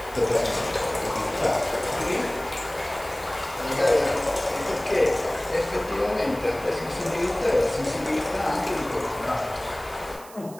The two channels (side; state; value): right; noise; hiss, 20 dB below the sound